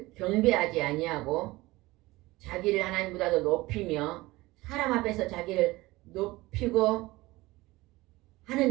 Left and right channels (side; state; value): left; quieter; 20.0 dB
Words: 경배하지 아니하고 자기를 하나님보다도 높이며 사람 앞에서 자기를 높이고